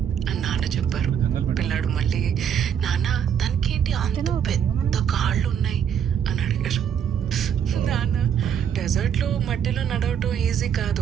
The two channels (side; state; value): left; quieter; 8.4 dB